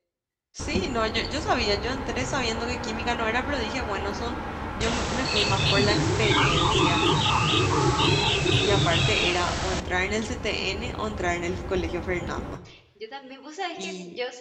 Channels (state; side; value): identical; both; correlation 1.00